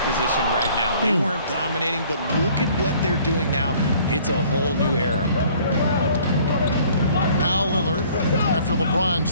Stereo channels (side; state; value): both; inverted; correlation -0.55